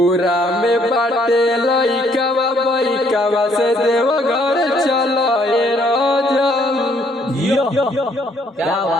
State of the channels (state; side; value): normal; both; correlation 0.66